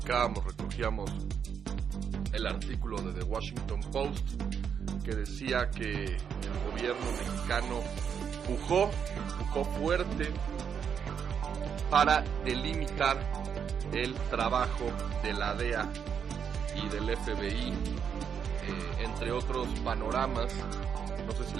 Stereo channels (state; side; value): quieter; left; 7.5 dB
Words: recogíamos el artículo de The Washington Post que decía que el gobierno mexicano pujó fuerte para delimitar el trabajo de la DEA y del FBI, entre otros panoramas. No sé si